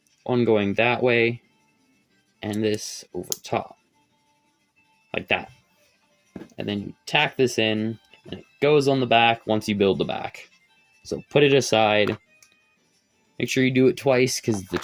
one going that way, and this over top. Like that. And then you tack this in, and it goes on the back once you build the back. So put it aside. Make sure you do it twice, because the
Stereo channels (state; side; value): identical; both; correlation 1.00